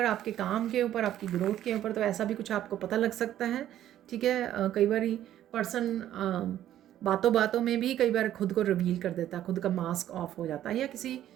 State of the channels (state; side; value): quieter; left; 12.0 dB